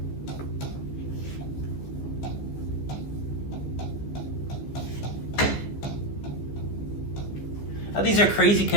Now these are crazy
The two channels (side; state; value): right; late; 14 ms